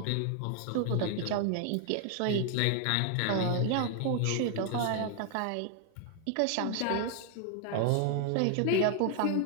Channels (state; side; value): different; both; correlation 0.00